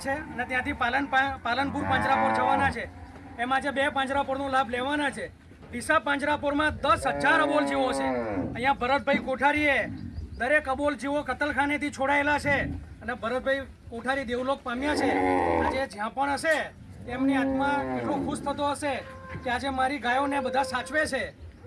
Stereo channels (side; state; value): both; identical; correlation 1.00